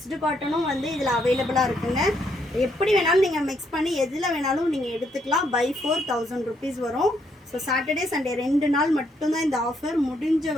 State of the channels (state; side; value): normal; both; correlation 0.73